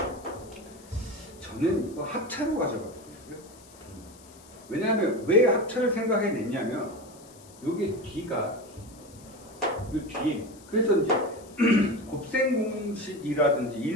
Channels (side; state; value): left; noise; hiss, 23 dB below the sound